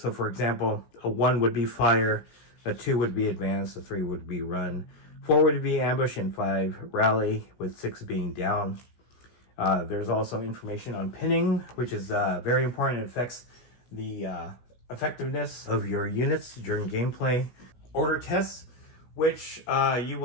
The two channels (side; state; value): right; late; 16 ms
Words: So for example, a 1 would be fire, a 2 would be advance, a 3 would be run, 4 would be ambush, and 5 rally, with 6 being down. There's also information on pinning, which is very important. It affects the effectiveness of your units during gameplay. Order tests, which you